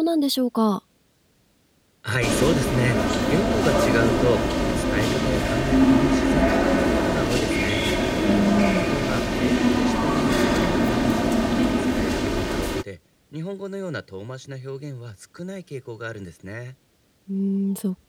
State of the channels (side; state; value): both; identical; correlation 1.00